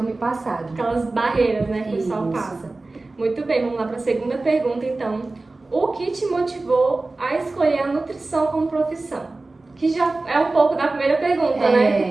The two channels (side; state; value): left; quieter; 3.3 dB